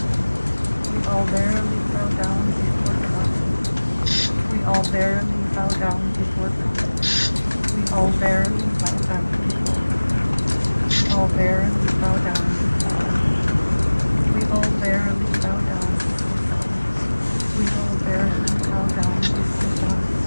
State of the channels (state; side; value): inverted; both; correlation -1.00